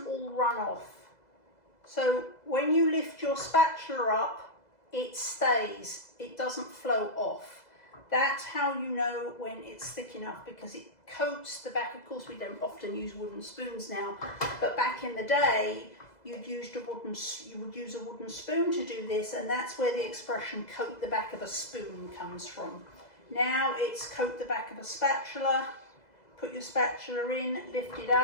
all run off. So when you lift your spatula up, it stays, it doesn't flow off. That's how you know when it's thick enough, because it coats the back. Of course, we don't often use wooden spoons now, but back in the day, you would use a wooden spoon to do this, and that's where the expression coat the back of a spoon comes from. Now it's coat the back of a spatula. Put your spatula in, lift it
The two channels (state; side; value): late; right; 2.0 ms